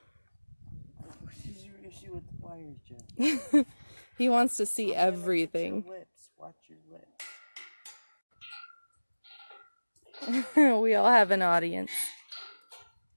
What is your issue with the wires, Jen? He wants to see everything. Your lips. Watch your lips. We all have an audience.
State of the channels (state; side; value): inverted; both; correlation -1.00